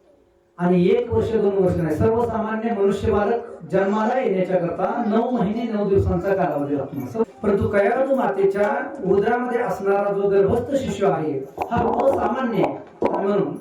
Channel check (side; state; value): both; identical; correlation 1.00